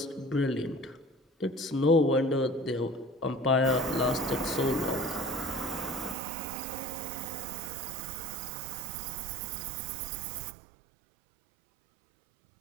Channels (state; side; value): drops out; left; at 6.2 s